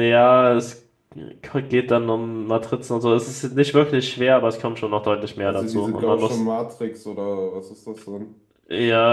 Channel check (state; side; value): identical; both; correlation 1.00